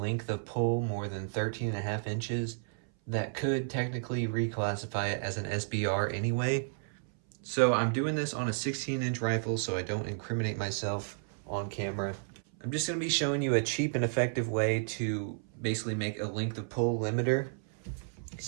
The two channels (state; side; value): silent; left; 56 dB below the other